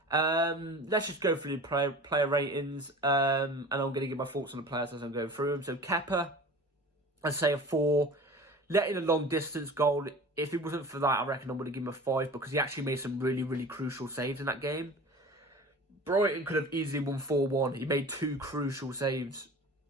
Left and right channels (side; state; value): both; normal; correlation 0.39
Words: Let's just go through the player ratings. And I'm going to give my thoughts on the players as I'm going through them. So Kepa, I'd say a 4. Letting a long distance goal. If it wasn't for that, I reckon I would have given him a 5 because he actually made some really, really crucial saves in that game. Brighton could have easily won 4-1. He made 2 crucial saves.